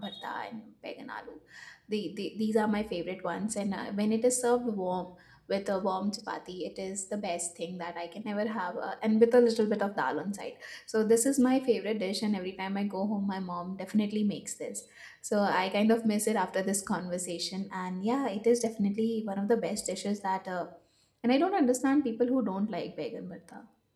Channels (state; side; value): identical; both; correlation 1.00